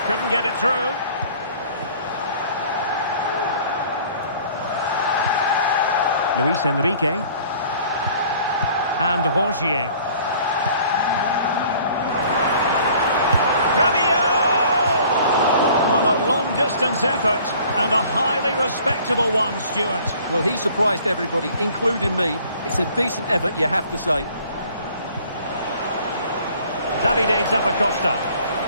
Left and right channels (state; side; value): inverted; both; correlation -0.53